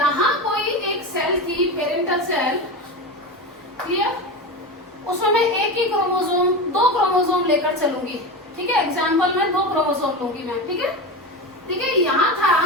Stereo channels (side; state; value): both; normal; correlation 0.22